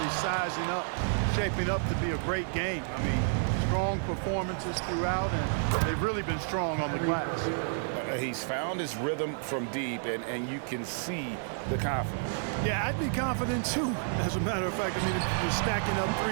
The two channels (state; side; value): silent; left; digital silence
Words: sizing up, shaping up to be a great game. I mean, strong performances throughout, and they've really been strong on the glass. He's found his rhythm from deep, and you can see the confidence. Yeah, I'd be confident too, as a matter of fact. I mean, if you're stacking up